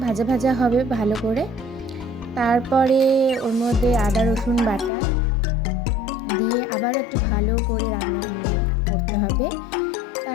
ভাজা ভাজা হবে ভালো করে। তারপরে ওর মধ্যে আদা রসুন বাটা দিয়ে আবারও একটু ভালো করে রান্না করতে হবে।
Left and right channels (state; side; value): drops out; right; at 4.9 s